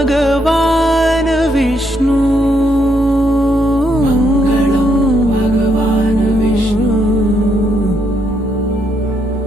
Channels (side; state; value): both; normal; correlation 0.75